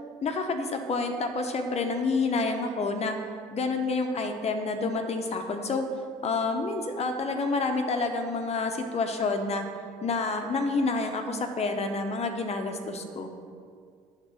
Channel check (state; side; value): quieter; right; 3.1 dB